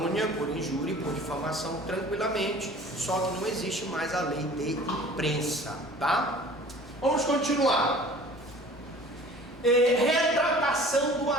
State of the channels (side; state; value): both; normal; correlation 0.46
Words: por injúria e por difamação tranquilamente, só que não existe mais a lei de imprensa, tá? Vamos continuar. Retratação do